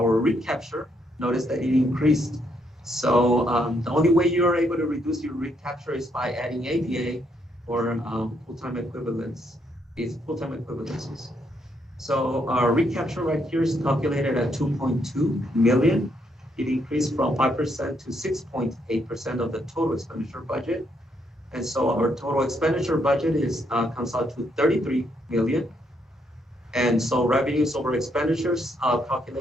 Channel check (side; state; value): both; normal; correlation 0.74